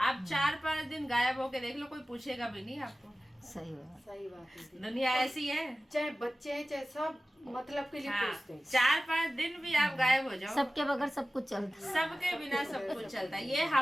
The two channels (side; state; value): both; normal; correlation 0.96